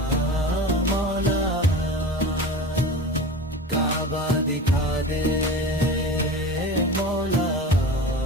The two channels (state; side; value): normal; both; correlation 0.33